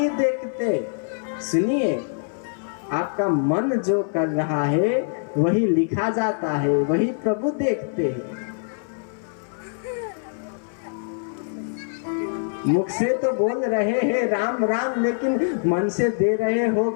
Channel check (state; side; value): silent; right; 62 dB below the other